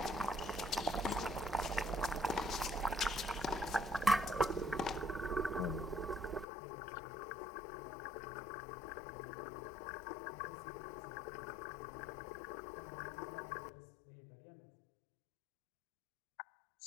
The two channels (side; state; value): right; drops out; at 6.5 s